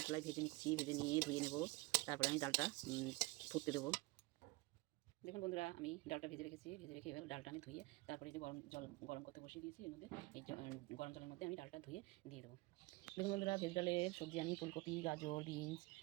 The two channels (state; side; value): quieter; left; 23.1 dB